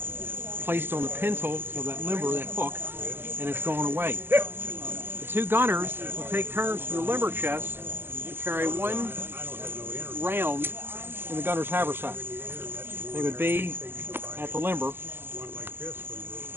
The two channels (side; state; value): left; late; 0.10 ms